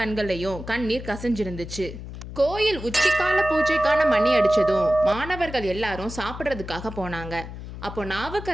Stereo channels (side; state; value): left; noise; hum, 11 dB below the sound